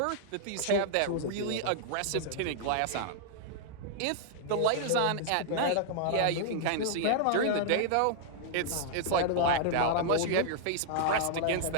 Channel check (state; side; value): different; both; correlation -0.01